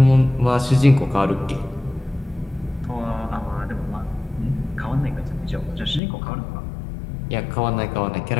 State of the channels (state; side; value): drops out; right; at 6.0 s